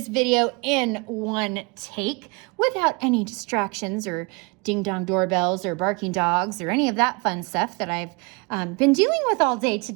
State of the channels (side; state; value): left; quieter; 30.0 dB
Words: video in one take without any distractions or ding-dong doorbells or barking dogs or any of that fun stuff that I've been dealing with all day